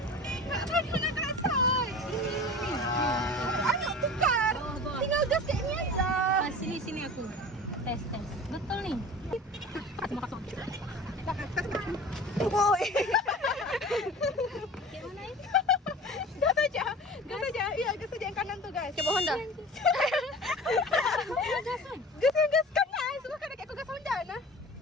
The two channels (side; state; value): both; normal; correlation 0.38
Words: Mana kasar. Ayo tukar. Tinggal gas kayak ini aja. Sini aku. Tes. Betul nih. Semua kosong. Woi. Kayak mana ini? Gas aja. Iya, gas aja yang kanan tuh, guys. Coba Honda. Gas yang gas kanan. Suka kan kayak gas Honda nah.